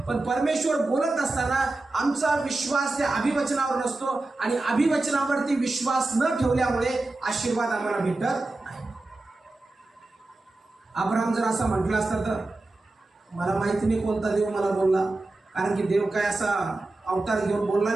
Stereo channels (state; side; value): quieter; left; 3.0 dB